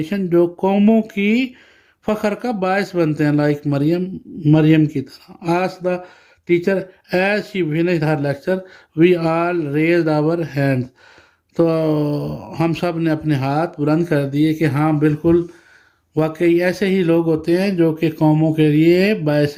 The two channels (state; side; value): identical; both; correlation 1.00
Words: جو قوموں کی فخر کا باعث بنتے ہیں, لائک مریم کی طرح. As the teacher as she finished her lecture we all raised our hand. تو ہم سب نے اپنے ہاتھ بلند کر دیے کہ ہاں بالکل واقعی ایسے ہی لوگ ہوتے ہیں جو کہ قوموں کے لیے